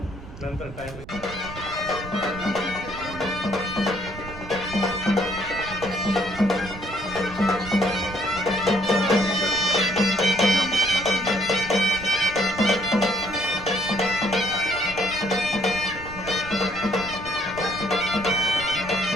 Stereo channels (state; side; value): noise; right; rumble, 14 dB below the sound